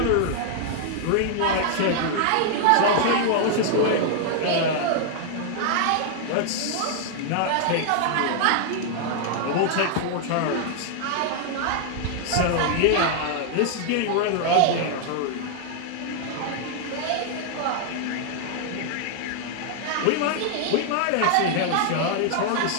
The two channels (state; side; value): different; both; correlation 0.00